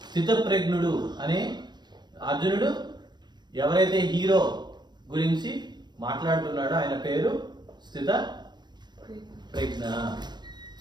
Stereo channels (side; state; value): left; late; 0.21 ms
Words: స్థితప్రజ్ఞుడు అనే అర్జునుడు ఎవరైతే హీరో గురించి మాట్లాడుతున్నాడో ఆయన పేరు